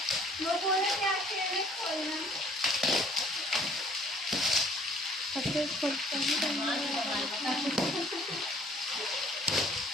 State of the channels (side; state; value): both; normal; correlation 0.57